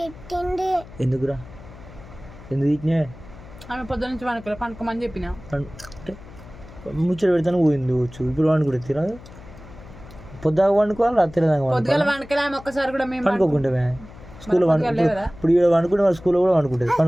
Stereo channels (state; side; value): noise; left; hum, 18 dB below the sound